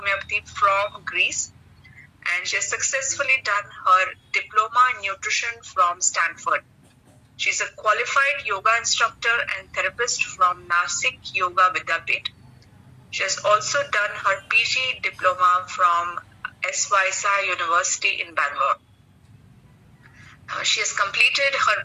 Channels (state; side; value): identical; both; correlation 1.00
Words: from Greece, and she has successfully done her diploma in nutrition from Stanford. She's a qualified yoga instructor and therapist from Nashik Yoga Vidyapeeth. She has also done her PG diploma from Svyasa University in Bangalore. She has completed her